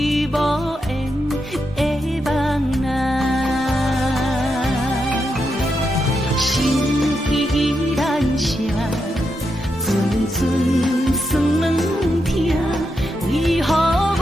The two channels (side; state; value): both; normal; correlation 0.84